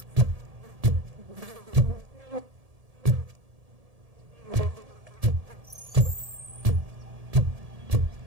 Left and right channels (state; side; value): late; left; 1.7 ms